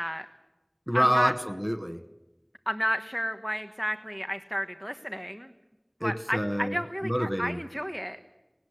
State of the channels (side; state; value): both; identical; correlation 1.00